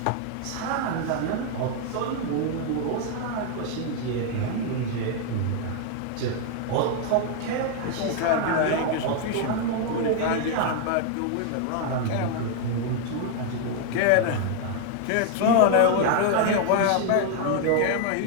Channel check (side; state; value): both; different; correlation 0.00